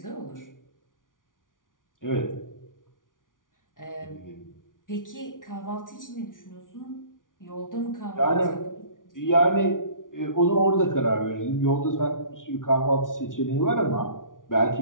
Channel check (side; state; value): right; late; 0.88 ms